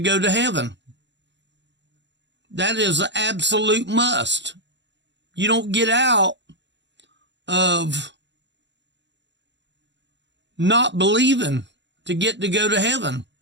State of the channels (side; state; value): left; late; 0.52 ms